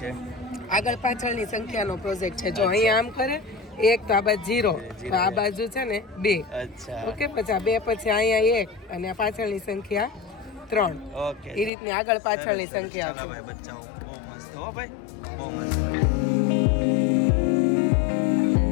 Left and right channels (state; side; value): drops out; right; at 11.7 s